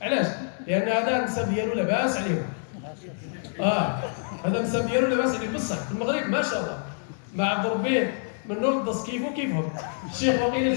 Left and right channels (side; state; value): right; silent; digital silence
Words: علاش؟ لان هذا النسب ديالو لاباس عليهم. هذا النسب ديالو لاباس عليه بصح في المغرب ما شاء الله ما عبد ربي من نور الدص كيفو كيفهم. الشيخ وقيل